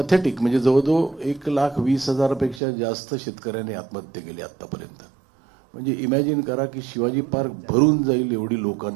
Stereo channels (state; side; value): drops out; left; at 2.6 s